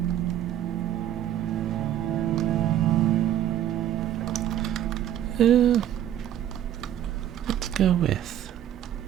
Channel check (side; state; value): left; quieter; 11.3 dB